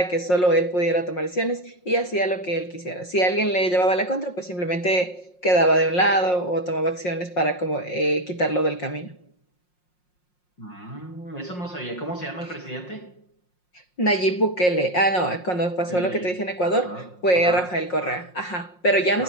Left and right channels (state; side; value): late; right; 5.6 ms